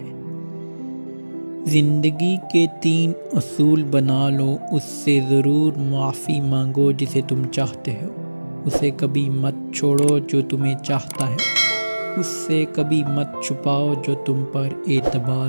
زندگی کے 3 اصول بنا لو، اس سے ضرور معافی مانگو جسے تم چاہتے ہو، اسے کبھی مت چھوڑو جو تمہیں چاہتا ہے، اس سے کبھی مت چھپاؤ جو تم پر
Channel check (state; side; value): inverted; both; correlation -1.00